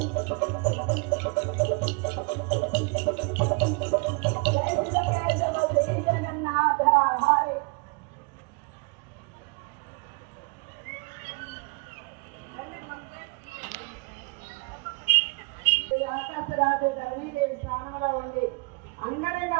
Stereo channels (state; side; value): quieter; left; 32.0 dB